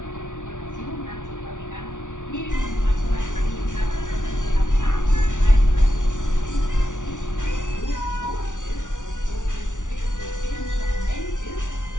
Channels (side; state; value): right; late; 0.87 ms